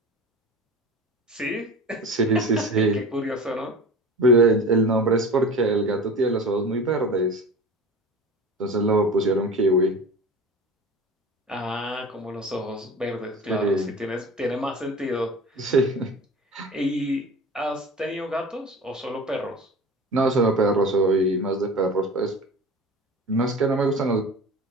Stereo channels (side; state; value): both; normal; correlation 0.34